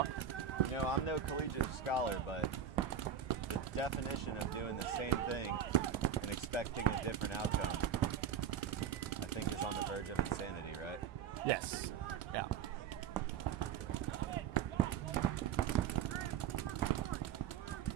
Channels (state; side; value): quieter; left; 8.2 dB